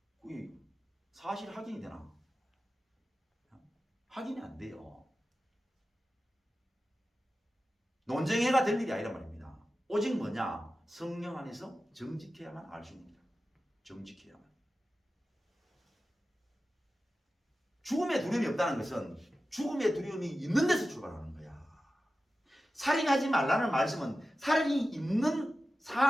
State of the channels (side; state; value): both; normal; correlation 0.93